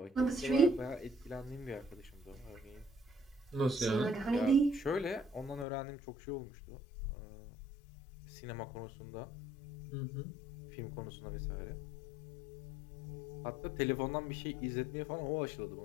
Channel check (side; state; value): right; drops out; at 5.7 s